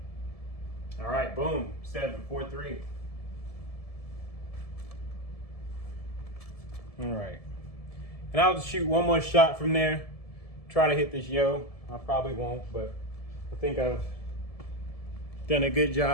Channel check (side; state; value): right; late; 1.7 ms